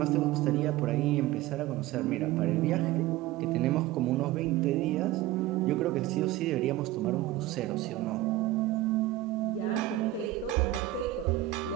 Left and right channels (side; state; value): left; quieter; 15.6 dB